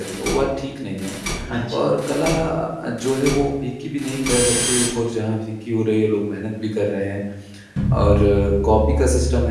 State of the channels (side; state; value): both; identical; correlation 1.00